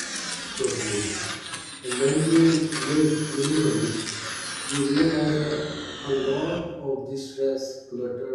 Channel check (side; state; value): both; identical; correlation 1.00